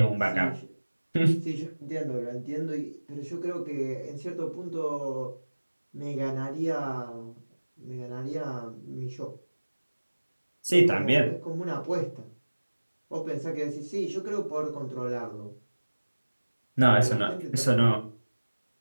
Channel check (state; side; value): inverted; both; correlation -1.00